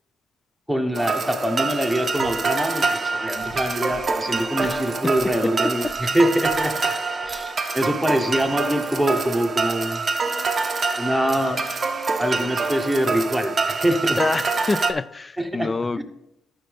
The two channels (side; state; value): both; normal; correlation 0.90